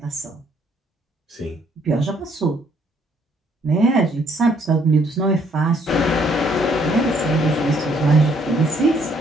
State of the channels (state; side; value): normal; both; correlation 0.66